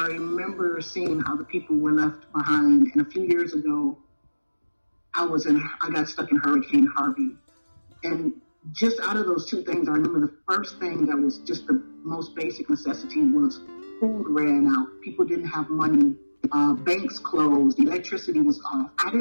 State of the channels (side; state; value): both; inverted; correlation -1.00